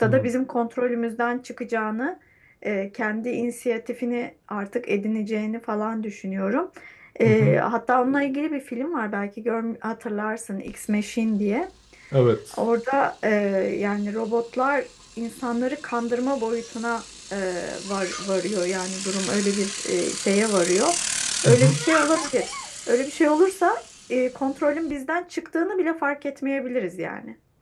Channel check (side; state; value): both; identical; correlation 1.00